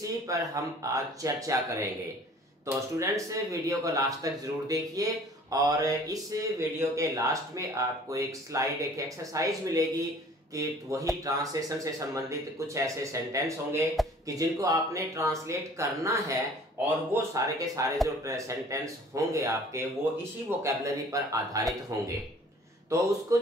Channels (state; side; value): normal; both; correlation 0.51